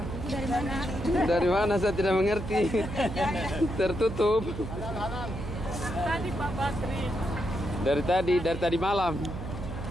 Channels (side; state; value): right; noise; hum, 8 dB below the sound